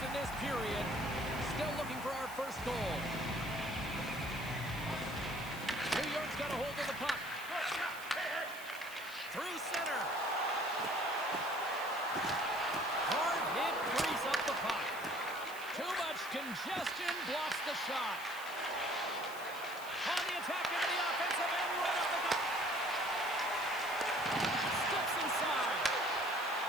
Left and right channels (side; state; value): right; noise; hiss, 16 dB below the sound